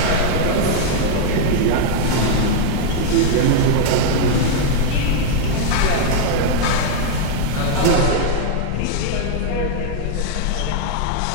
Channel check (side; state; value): both; different; correlation 0.00